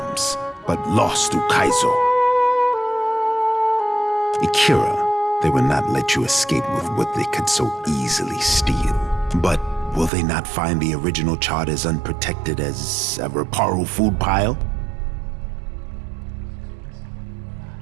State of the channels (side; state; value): left; drops out; at 10.1 s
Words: but lost Ukaizo. Ikira, they will not let you escape with what they could so easily steal. But will they not find the original chart as unprotected as a Reparo food pile?